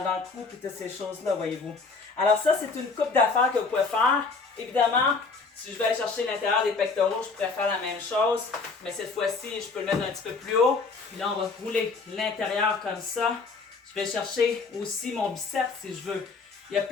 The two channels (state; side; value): quieter; right; 4.4 dB